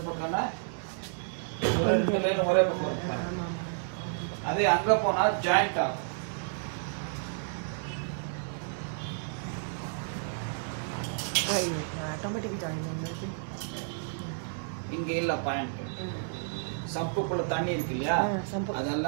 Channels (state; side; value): silent; left; digital silence